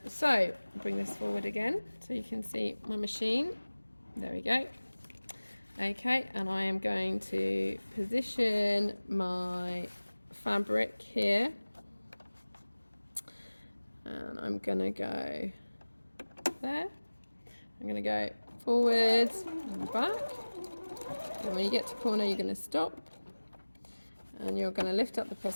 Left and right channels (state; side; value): inverted; both; correlation -1.00